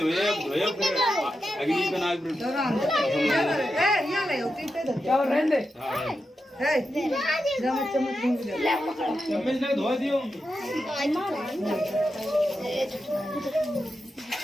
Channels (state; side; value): normal; both; correlation 0.88